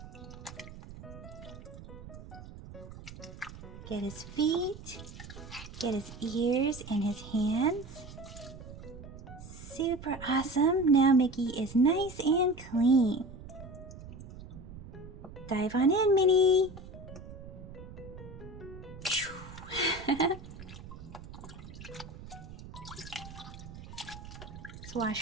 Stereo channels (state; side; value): noise; right; rumble, 14 dB below the sound